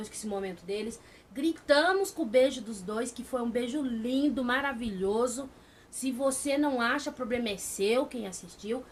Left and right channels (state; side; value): identical; both; correlation 1.00